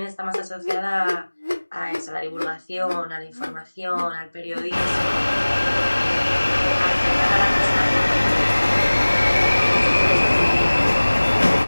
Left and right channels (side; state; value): both; inverted; correlation -1.00